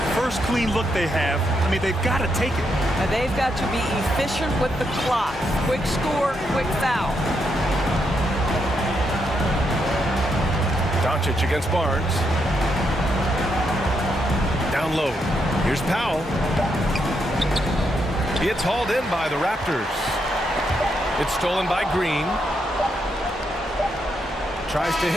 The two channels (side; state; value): both; normal; correlation 0.80